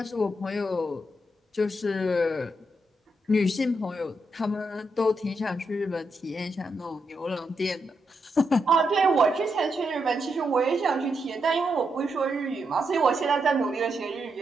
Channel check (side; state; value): both; normal; correlation 0.82